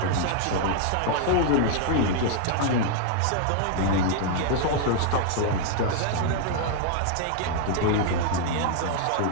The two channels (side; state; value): both; different; correlation 0.00